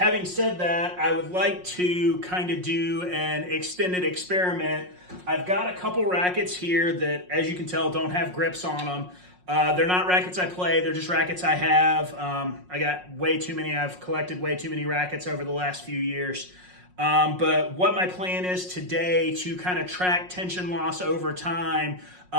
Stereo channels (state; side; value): late; left; 5.5 ms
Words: said that, I would like to kind of do an extended experiment. I've got a couple rackets here that, as you can tell, don't have grips on them. They're not rackets I play, they're just rackets I have. I got way too many, I've collected way too many rackets over the last few years. But what my plan is today to kind of track tension loss over time,